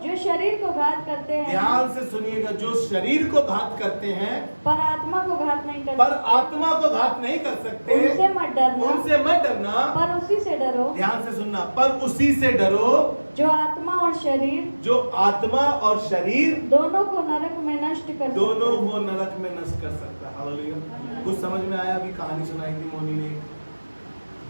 जो शरीर को घात करते हैं, ध्यान से सुनिएगा, जो शरीर को घात करते हैं पर आत्मा को घात नहीं कर पर सकते, आत्मा को घात नहीं कर सकते, उनसे मत डरना, उनसे मत डरना, पर उसी से डरो। ध्यान से सुनना, पर उसी से डरो जो आत्मा और शरीर, जो आत्मा और शरीर दोनों को नरक में नष्ट कर सकता है। दोनों को नरक में नष्ट कर सकता है। हालेलुया। कुछ समझ में आया? अभी कहानी सुनाई थी मोनी ने,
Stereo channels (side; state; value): both; inverted; correlation -1.00